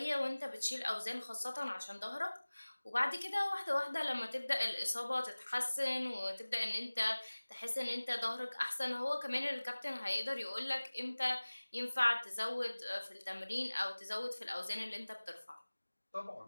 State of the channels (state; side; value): inverted; both; correlation -1.00